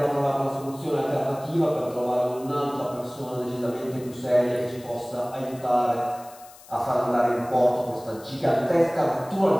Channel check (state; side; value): noise; left; hiss, 22 dB below the sound